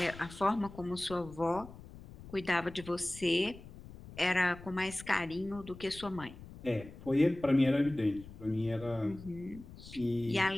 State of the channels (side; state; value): left; noise; rumble, 16 dB below the sound